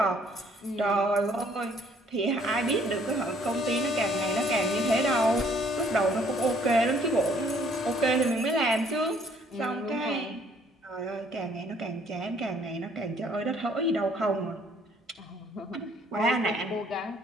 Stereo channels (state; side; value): normal; both; correlation 0.62